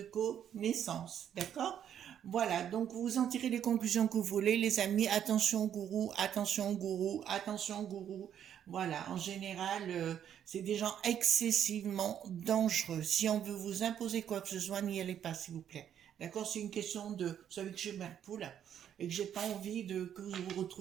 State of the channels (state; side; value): quieter; left; 9.5 dB